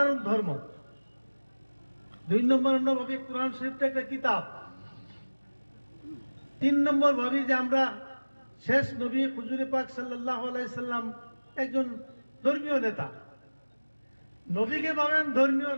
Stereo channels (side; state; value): both; inverted; correlation -1.00